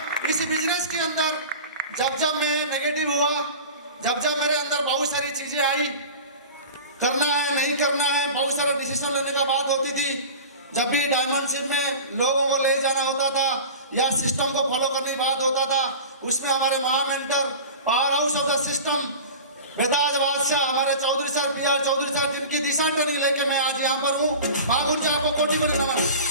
इस बिजनेस के अंदर जब मैं नेगेटिव हुआ, जब मेरे अंदर बहुत सारी चीजें आई, करना है नहीं करना है, बहुत सारा डिसीजन लेने का बात होती थी। जब भी डायमंडशिप में लोगों को ले जाना होता था या सिस्टम को फॉलो करने की बात होता था, उसमें हमारे महामेंटर power house of the system बेताज बादशाह हमारे Chaudhary sir PR Chaudhary sir, जिनकी दिशा ट्रेनिंग लेके मैं आज यहाँ पर हूँ। महागुरु जी आपको कोटि कोटि नमन।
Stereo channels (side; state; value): both; inverted; correlation -0.35